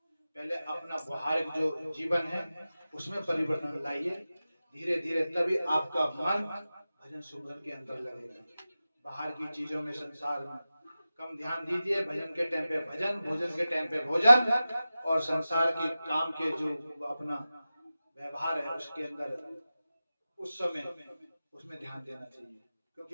पहले अपना व्यवहारिक जो जीवन है उसमें परिवर्तन लाइए, धीरे धीरे तभी आपका मन भजन सुमरन के अंदर लगेगा। बाहर की चीजों में, संसार में कम ध्यान दीजिए। भजन के टाइम पे भजन, भोजन के टाइम पे भोजन, और संसार की काम के जो अपना व्यवहार है उसके अंदर उस समय उसमें ध्यान देना चाहिए,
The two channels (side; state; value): both; inverted; correlation -0.95